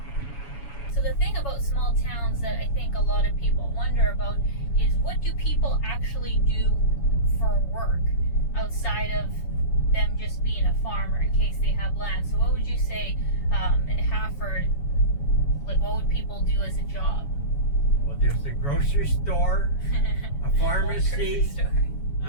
So the thing about small towns that I think a lot of people wonder about is, what do people actually do for work outside of them just being a farmer in case they have land? So what would you say in Hafford, like what would people do as a job? Well, there's a grocery store, a pharmacy,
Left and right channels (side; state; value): right; late; 7.1 ms